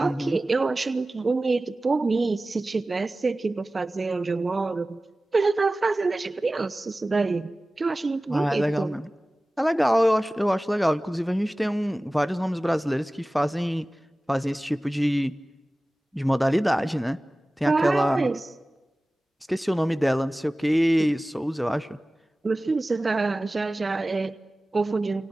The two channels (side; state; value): both; normal; correlation 0.97